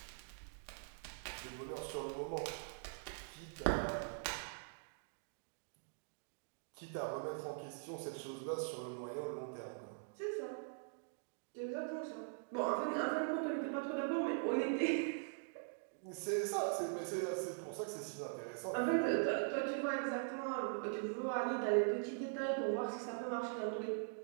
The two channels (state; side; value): silent; left; digital silence